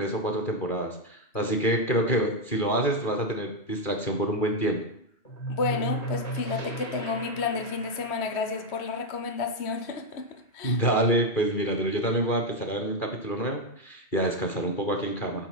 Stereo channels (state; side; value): late; right; 2.4 ms